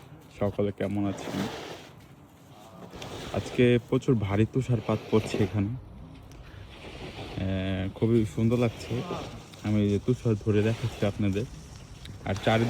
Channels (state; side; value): identical; both; correlation 1.00